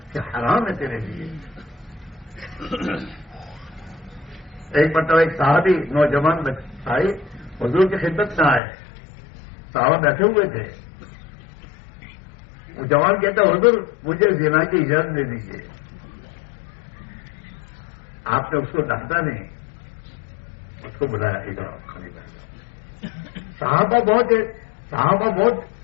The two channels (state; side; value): drops out; right; at 8.6 s